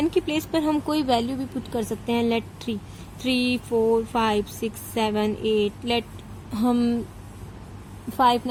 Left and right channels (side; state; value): both; identical; correlation 1.00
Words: की प्लेस पर हम कोई वैल्यू भी पुट कर सकते हैं, लेट 3, 4, 5, 6, 7, 8, लेट हम 5